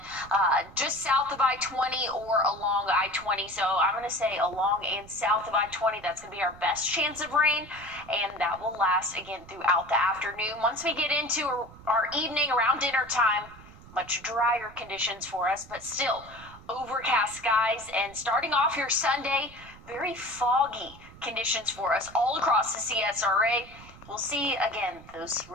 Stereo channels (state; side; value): noise; right; rumble, 20 dB below the sound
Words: just south of I-20 or along I-20. So I'm going to say along and south of I-20, that's going to be our best chance of rain. And that will last, again, throughout the afternoon. Once we get into our evening around dinner time, much drier conditions for us, but still overcast skies. And starting off your Sunday, very foggy conditions for us all across the CSRA. We'll see, again, those